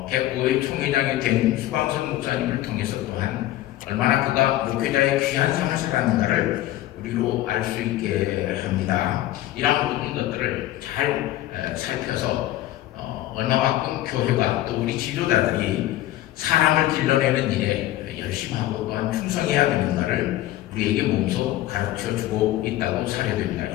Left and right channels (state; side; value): quieter; right; 14.9 dB